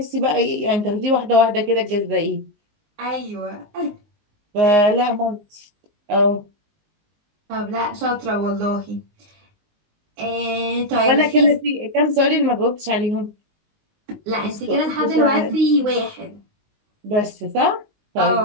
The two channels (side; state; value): left; late; 19 ms